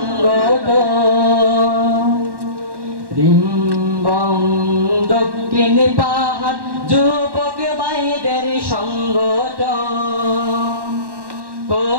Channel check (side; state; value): left; late; 1.1 ms